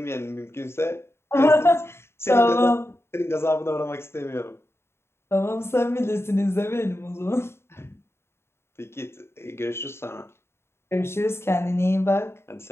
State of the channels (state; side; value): late; right; 0.12 ms